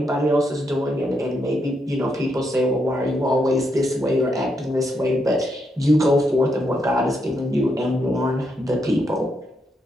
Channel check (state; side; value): normal; both; correlation 0.79